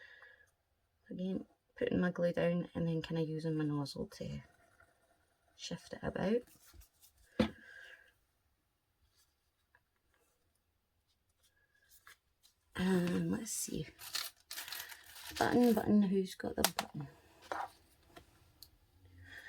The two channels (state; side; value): identical; both; correlation 1.00